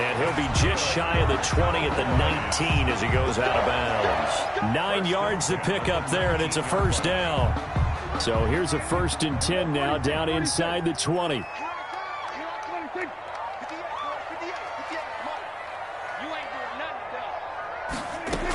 he'll be just shy of the 20 at the 19 as he goes out of bounds. 9 yards to pick up there, and it's a first down. So here's a 1st and 10 now down inside the 20.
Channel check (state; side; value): identical; both; correlation 1.00